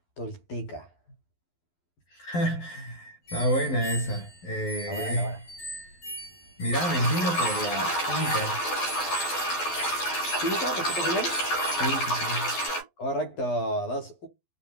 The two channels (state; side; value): late; right; 12 ms